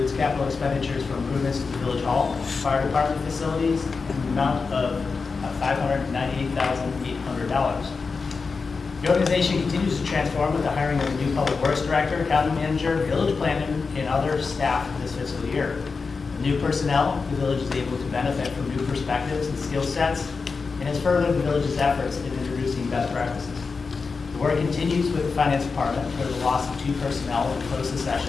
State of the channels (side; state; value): right; quieter; 4.7 dB